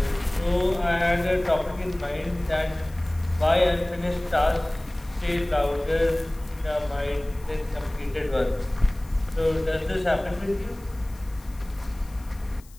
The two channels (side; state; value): left; noise; hiss, 25 dB below the sound